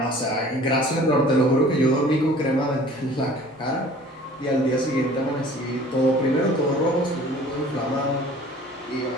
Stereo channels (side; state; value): both; normal; correlation 0.48